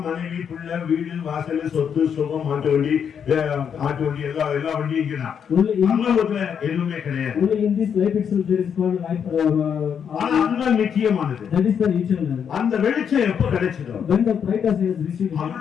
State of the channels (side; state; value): right; quieter; 7.7 dB